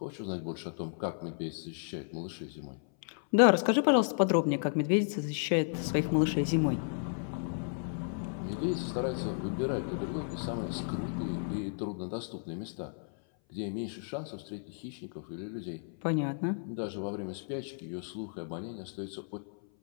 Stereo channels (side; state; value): right; silent; 56 dB below the other